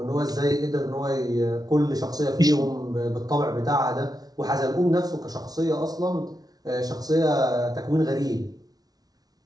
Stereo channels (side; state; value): left; late; 0.19 ms